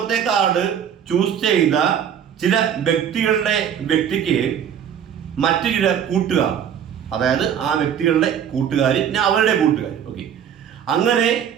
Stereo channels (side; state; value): left; quieter; 8.7 dB